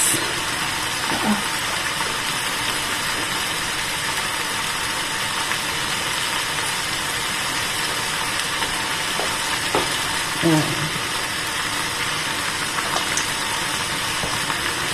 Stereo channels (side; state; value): both; identical; correlation 1.00